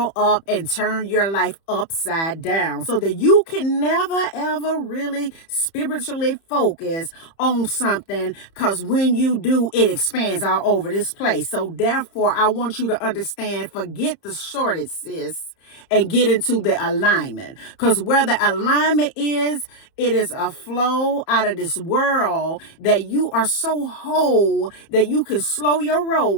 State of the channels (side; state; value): right; late; 30 ms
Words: up and turn your life upside down so that you can never ever really spiritually focus on something, because when you do, it expands all over this place. So therefore, I want you to understand, forget the shortage, sis, and get into the alignment. Because where the alignment is, it is a flow out of this world that you are so whole that you can slow your roll